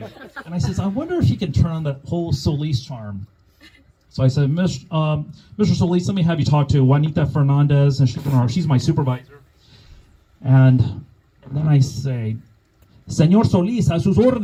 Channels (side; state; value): both; identical; correlation 1.00